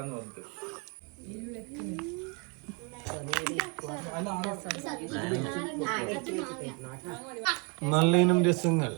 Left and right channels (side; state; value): left; quieter; 33.5 dB